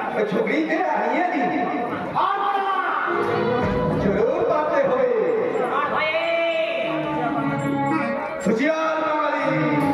छोकरी के आइए दी और बोला जरूर बातें होए और भये सुचियार माली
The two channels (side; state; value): both; identical; correlation 1.00